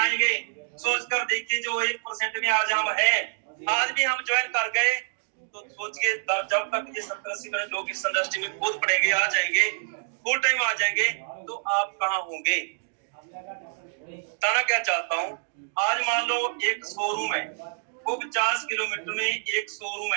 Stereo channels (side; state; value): left; silent; digital silence